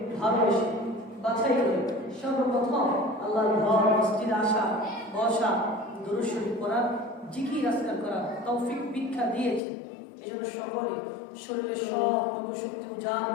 ভালোবেসে বাছাই করে সর্বপ্রথম আল্লাহর ঘর মসজিদে আসা বসা দুরূদ শরীফ পড়া জিকির আজকার করা তৌফিক ভিক্ষা দিয়েছেন। এজন্য সকলে শরীরের সবটুকু শক্তি উজাড়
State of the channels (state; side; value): drops out; right; at 9.6 s